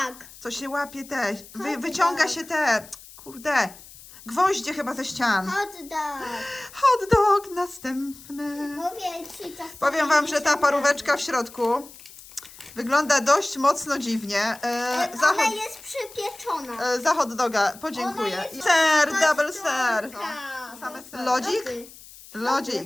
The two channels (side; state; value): left; noise; hiss, 19 dB below the sound